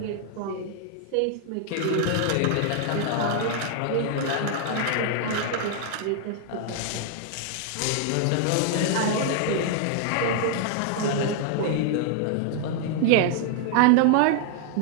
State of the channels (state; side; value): different; both; correlation 0.00